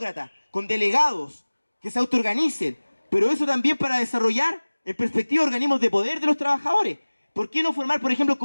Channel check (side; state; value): both; inverted; correlation -1.00